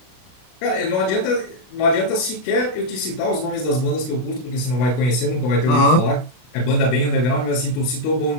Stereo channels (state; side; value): late; right; 32 ms